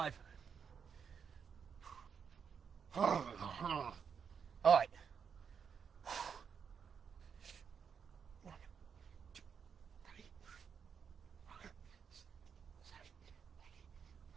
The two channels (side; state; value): left; quieter; 6.8 dB